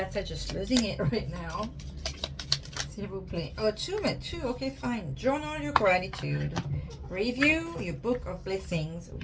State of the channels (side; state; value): both; identical; correlation 1.00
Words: are just losing it right now. S'il vous plaît. Oh, two. Okay, fine. Journal your gratitude. Review your book of blessings